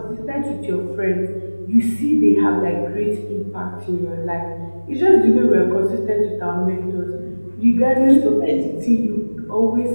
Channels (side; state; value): both; inverted; correlation -1.00